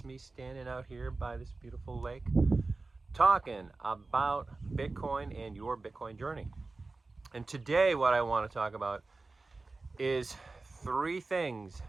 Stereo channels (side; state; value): left; quieter; 3.5 dB